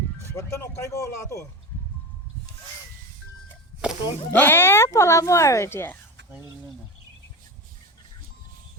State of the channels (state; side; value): normal; both; correlation 0.24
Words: बर्तन ओकाई को ला तो পলাব আৰু এতিয়া